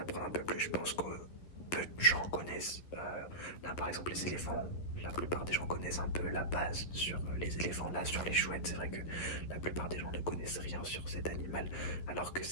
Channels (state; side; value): late; right; 11 ms